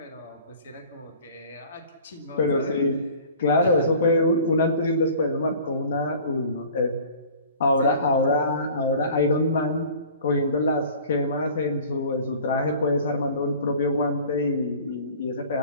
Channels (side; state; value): both; inverted; correlation -0.46